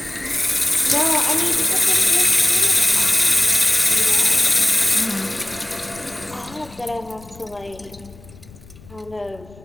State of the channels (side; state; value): left; noise; rumble, 22 dB below the sound